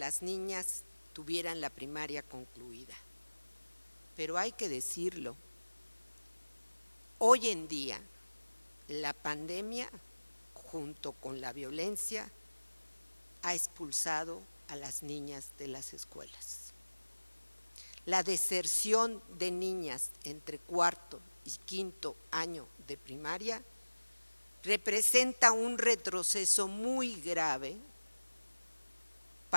niñas tuvieran la primaria concluida, pero hay que decirlo, hoy en día la pandemia junto con la violencia ha expulsado a las niñas de las escuelas. La deserción de niñas entre cuarto y quinto año de primaria representa un retroceso muy grave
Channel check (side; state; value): both; inverted; correlation -1.00